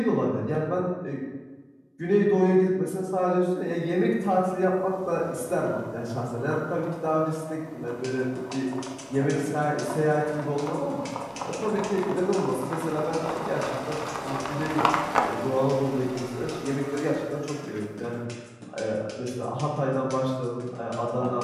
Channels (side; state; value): both; identical; correlation 1.00